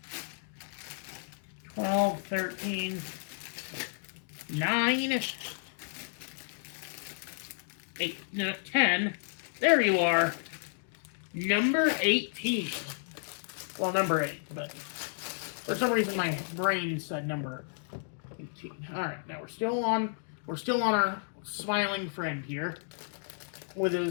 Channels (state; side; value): silent; right; digital silence